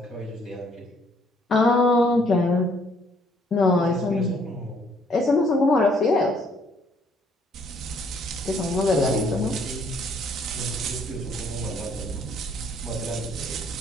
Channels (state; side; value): normal; both; correlation 0.65